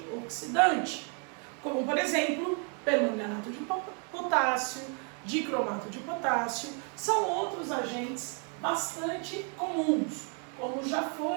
oxidante, como por exemplo, permanganato de potássio, dicromato de potássio, são outros agentes bastante comuns, como já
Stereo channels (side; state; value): left; quieter; 39.5 dB